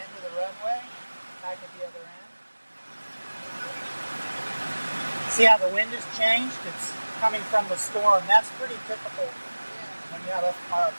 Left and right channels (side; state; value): both; inverted; correlation -1.00